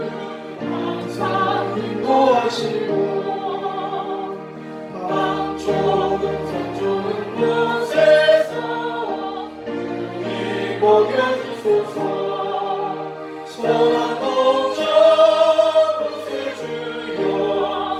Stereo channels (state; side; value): identical; both; correlation 1.00